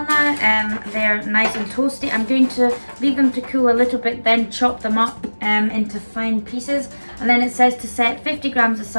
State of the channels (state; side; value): inverted; both; correlation -1.00